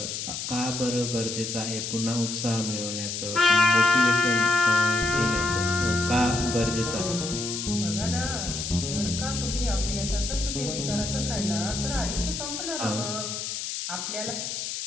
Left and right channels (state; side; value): noise; left; hiss, 5 dB below the sound